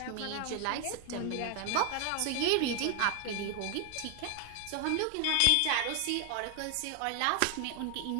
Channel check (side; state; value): both; different; correlation 0.00